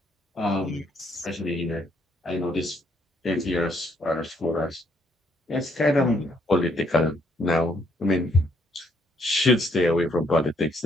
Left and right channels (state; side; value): normal; both; correlation 0.69